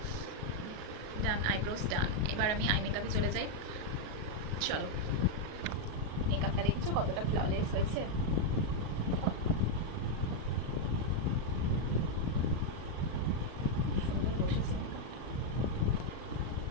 ডান, আইব্রোস ডান। এবার আমি আই মেকআপে চলে যাই। চলো, মেকআপটা দেখেছো কতটা ফ্ললেস হয়েছে। সুন্দর বসেছে মেকআপটা,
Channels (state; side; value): late; left; 38 ms